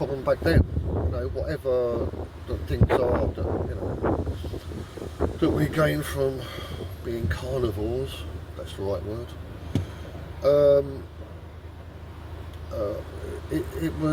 back then. You know, whatever the things are that, you know, that we gain from being carnivores, that's the right word,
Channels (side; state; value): both; identical; correlation 1.00